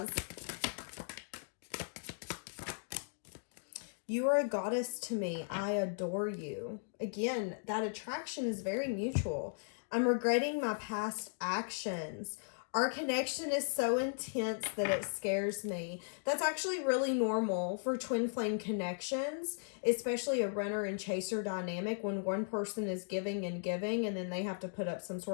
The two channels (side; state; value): right; silent; digital silence